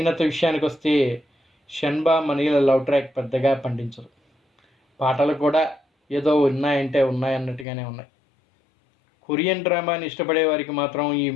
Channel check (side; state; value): right; drops out; at 7.7 s